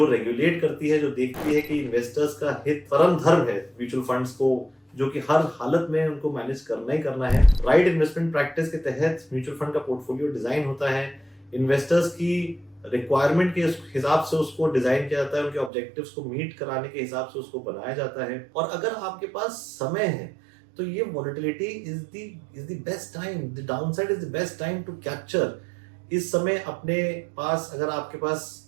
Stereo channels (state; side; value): drops out; left; at 15.7 s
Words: रेगुलेट करती है, जो देखती है कि इन्वेस्टर्स का हित परम धर्म है म्यूचुअल फंड्स को, जो कि हर हालत में उनको मैनेज करना ही करना है। राइट इन्वेस्टमेंट प्रैक्टिस के तहत म्यूचुअल फंड का पोर्टफोलियो डिजाइन होता है, इन्वेस्टर्स की रिक्वायरमेंट के हिसाब से उसको डिजाइन किया जाता है, उनके ऑब्जेक्टिव्स को मीट कराने के हिसाब से उसको बनाया जाता है। और अगर आपके पास समय है तो ये volatility is the best time, the downside is the best time to capture. इस समय अपने पास, अगर आपके पास